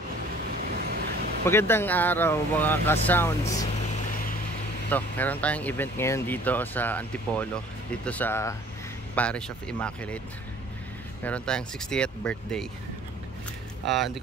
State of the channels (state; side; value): normal; both; correlation 0.52